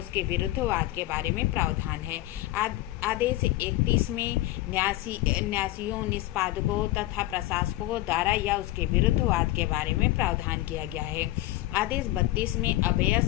विरुद्ध वाद के बारे में प्रावधान है। आदेश 31 में न्यासियों, निष्पादकों तथा प्रशासकों द्वारा या उसके विरुद्ध वाद के बारे में प्रावधान किया गया है। आदेश 32 में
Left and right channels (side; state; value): right; quieter; 16.9 dB